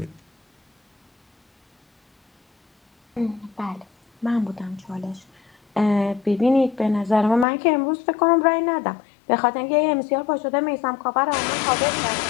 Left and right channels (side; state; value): right; drops out; at 7.5 s